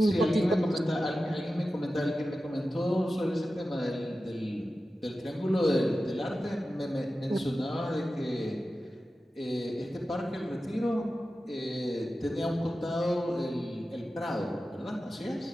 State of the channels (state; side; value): normal; both; correlation 0.93